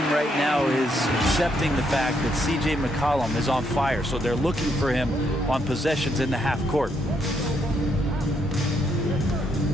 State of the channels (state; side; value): normal; both; correlation 0.75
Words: right now is accepting the fact that C.J. McCollum is on fire, so they're looking for him on possessions in the half court.